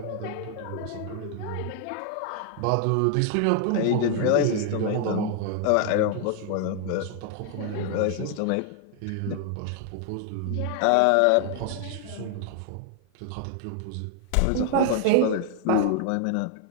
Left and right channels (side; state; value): both; different; correlation 0.00